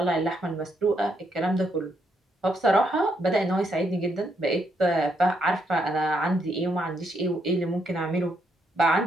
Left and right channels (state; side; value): normal; both; correlation 0.76